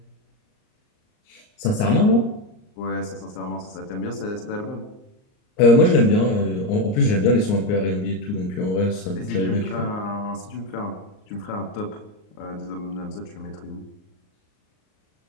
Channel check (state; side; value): late; right; 38 ms